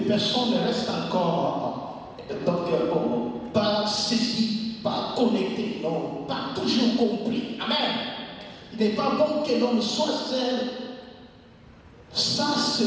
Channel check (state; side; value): identical; both; correlation 1.00